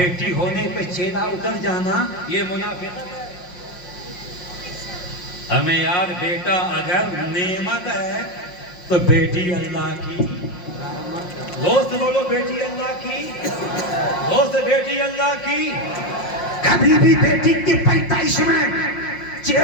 ہونے پہ چہرہ اتر جانا, یہ منافقت ہے. ہمیں یار بیٹا اگر نعمت ہے تو بیٹی اللہ کی. دوست بولو بیٹی اللہ کی, دوست بیٹی اللہ کی. کبھی بھی بیٹی کی پیدائش میں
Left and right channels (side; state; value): right; late; 5.6 ms